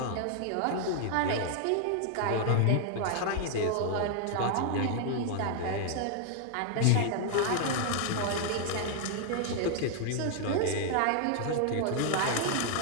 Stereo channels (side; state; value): both; different; correlation 0.00